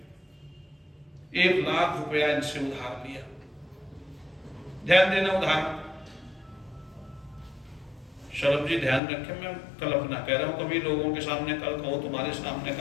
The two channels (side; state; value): right; drops out; at 9.0 s